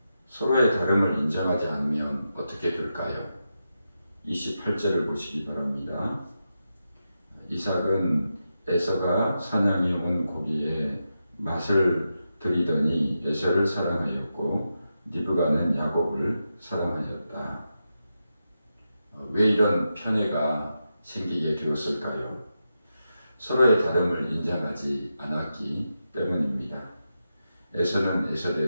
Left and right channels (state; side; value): inverted; both; correlation -0.88